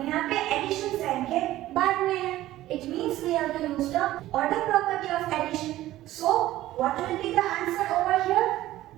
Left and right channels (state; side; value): quieter; left; 15.2 dB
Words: यहाँ पे एडिशन साइन के बाद में है. It means we have to use the order property of addition. So what will be the answer over here?